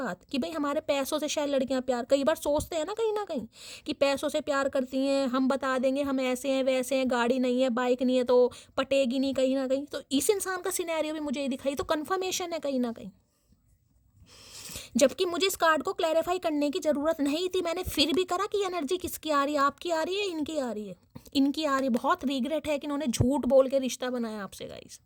कि भाई हमारे पैसों से शायद लड़कियां प्यार, कई बार सोचते हैं ना कहीं कि पैसों से प्यार करती हैं, हम बता देंगे हम ऐसे हैं वैसे हैं, गाड़ी नहीं है बाइक नहीं है तो पटेगी नहीं कहीं ना कहीं। तो इस इंसान का सिनेरियो भी मुझे दिखाई, तो कन्फर्मेशन है कहीं ना कहीं। जबकि मुझे इस कार्ड को क्लैरिफाई करने की ज़रूरत नहीं थी, मैंने फिर भी करा कि एनर्जी किसकी आ रही है, आपकी आ रही है, इनकी आ रही है, इनकी आ रही है। बहुत रिग्रेट है कि इन्होंने झूठ बोल के रिश्ता बनाया आपसे गाइस।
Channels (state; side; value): identical; both; correlation 1.00